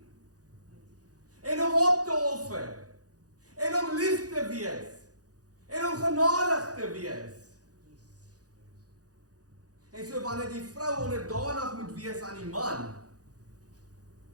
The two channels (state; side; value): late; left; 0.67 ms